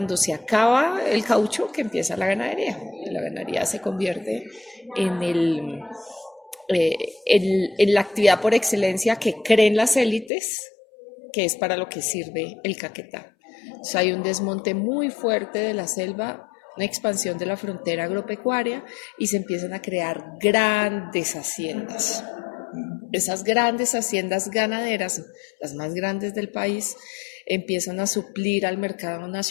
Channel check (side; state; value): right; drops out; at 10.3 s